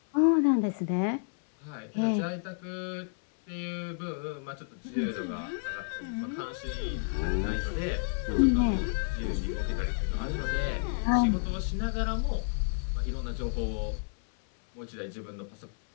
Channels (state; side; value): silent; right; 57 dB below the other